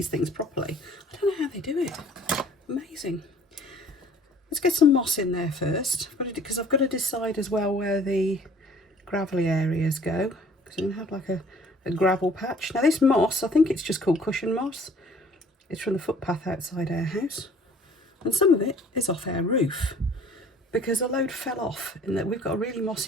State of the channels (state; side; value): normal; both; correlation 0.54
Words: things properly, I don't know how they do it. Amazing. Let's get some moss in there first, because I've got to decide as well where the gravelly areas go, because I'm going to have like a gravel patch. Now this moss, I think it's just called cushion moss. It's from the footpath outside our house, and some of it is off our roof because a load fell off, and that we've got a really